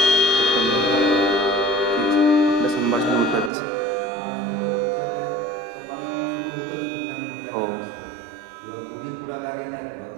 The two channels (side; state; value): left; drops out; at 3.5 s